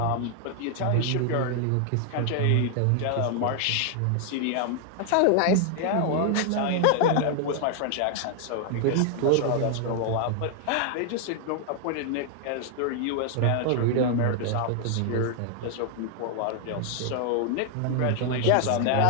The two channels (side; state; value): both; different; correlation 0.00